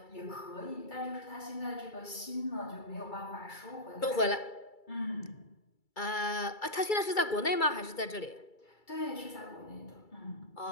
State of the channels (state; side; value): late; right; 2.3 ms